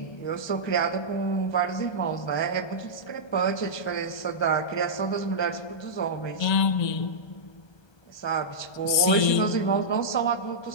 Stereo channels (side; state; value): right; late; 1.3 ms